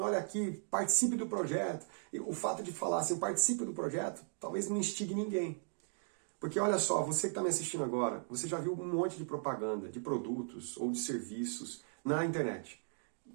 olha aqui, participe do projeto. E o fato de falar assim, participe do projeto, talvez não instigue ninguém. Porque olha só, você que está me assistindo agora, você já viu um monte de propaganda, de produtos ou de serviços na internet.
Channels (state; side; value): silent; left; digital silence